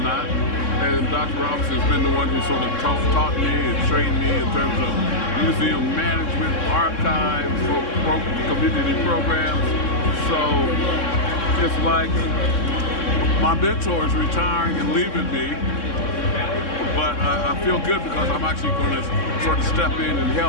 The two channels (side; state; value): right; late; 3.6 ms